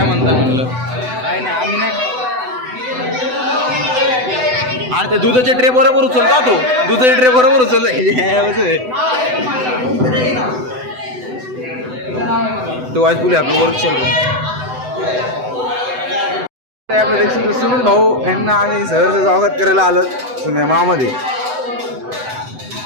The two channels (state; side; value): late; left; 7.9 ms